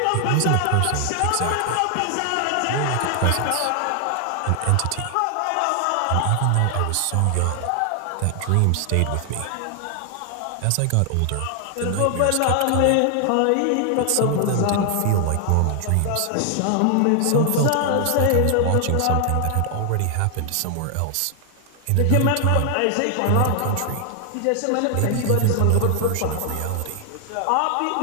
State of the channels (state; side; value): different; both; correlation 0.00